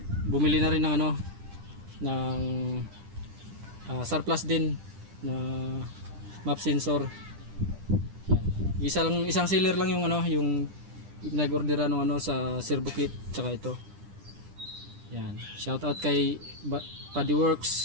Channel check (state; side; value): late; left; 10 ms